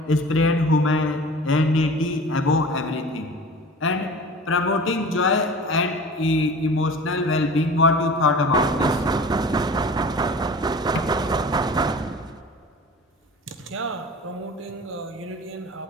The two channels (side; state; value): both; normal; correlation 0.39